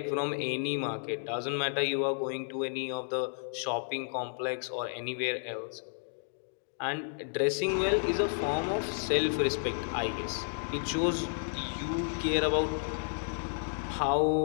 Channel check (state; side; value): silent; right; digital silence